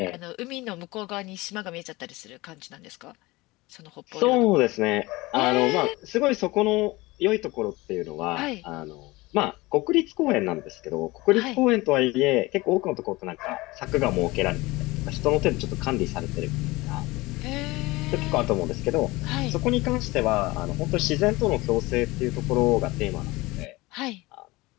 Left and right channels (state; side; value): quieter; right; 21.4 dB